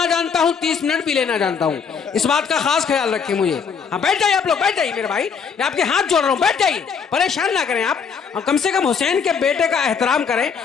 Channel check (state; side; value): quieter; right; 6.3 dB